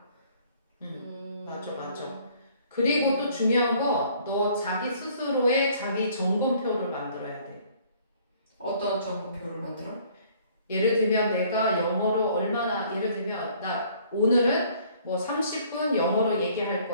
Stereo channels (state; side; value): inverted; both; correlation -0.58